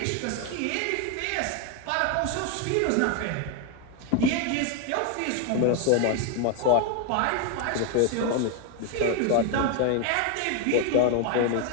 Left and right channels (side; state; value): both; different; correlation 0.01